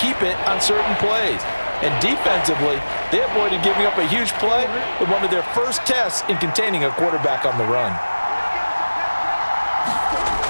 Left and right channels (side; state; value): both; inverted; correlation -1.00